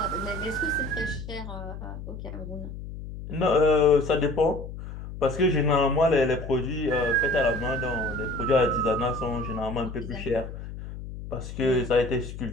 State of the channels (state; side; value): noise; left; hum, 10 dB below the sound